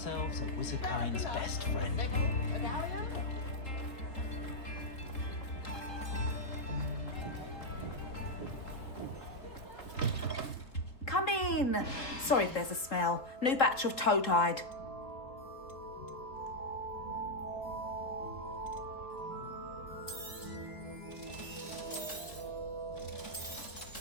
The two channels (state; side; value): late; right; 3.7 ms